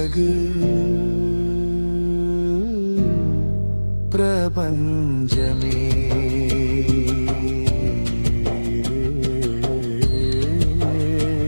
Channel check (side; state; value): both; inverted; correlation -1.00